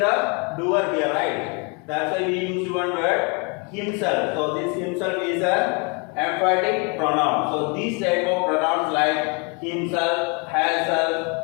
doer here, right? That's why we use one word himself. So this himself is an emphatic pronoun. So these type of pronouns like himself,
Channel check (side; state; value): right; quieter; 33.3 dB